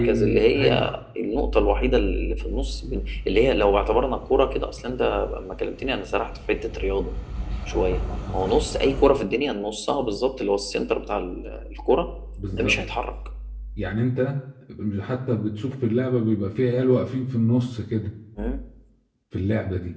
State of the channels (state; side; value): identical; both; correlation 1.00